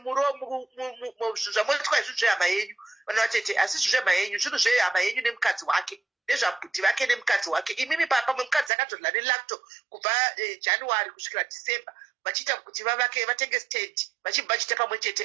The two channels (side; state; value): left; drops out; at 8.7 s